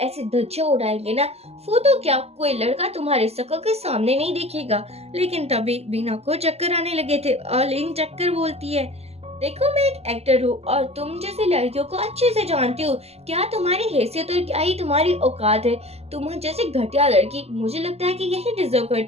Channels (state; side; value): late; left; 0.30 ms